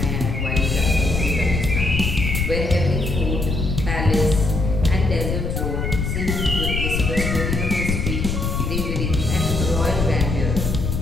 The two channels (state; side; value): noise; left; rumble, 1 dB below the sound